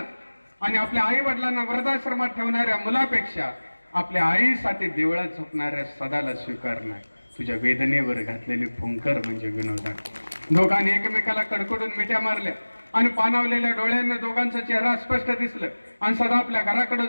आणि आपल्या आई वडिलांना वृद्धाश्रमात ठेवणाऱ्या मुलापेक्षा आपल्या आईसाठी देवळात झोपणाऱ्या सदाला स्वीकारणं. तुझ्या वेदनेवर घातलेली फुंकर म्हणजे विनोद. दोघांनी एकमेकाला कडकडून मिठ्या मारल्या. आणि पाणावलेल्या डोळ्यांना दोघांचा चेहरा स्पष्ट दिसलं आणि सदा आपल्या घराकडे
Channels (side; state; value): both; inverted; correlation -1.00